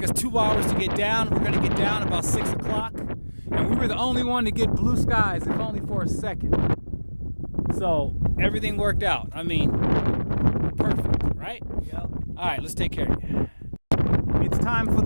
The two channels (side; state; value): both; inverted; correlation -1.00